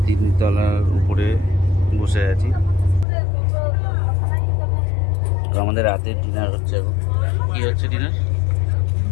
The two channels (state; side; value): drops out; right; at 3.1 s